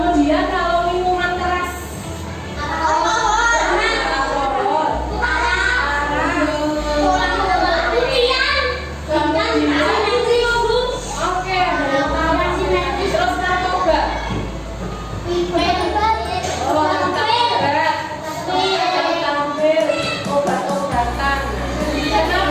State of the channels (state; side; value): identical; both; correlation 1.00